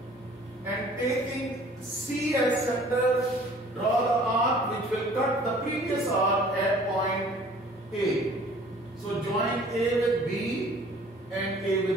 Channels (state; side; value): normal; both; correlation 0.52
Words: and taking C as center, draw the arc which will cut the previous arc at point A. So join A with B and A